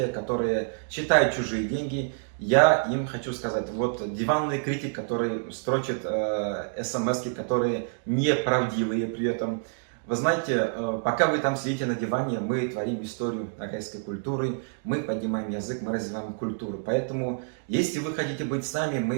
которые считают чужие деньги. Я им хочу сказать, вот диванный критик, который строчит смс-ки, которые неправдивые при этом. Вы знаете, пока вы там сидите на диване, мы творим историю ногайской культуры, мы поднимаем язык, мы развиваем культуру. Поэтому, если вы хотите быть с нами,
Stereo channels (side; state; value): left; silent; digital silence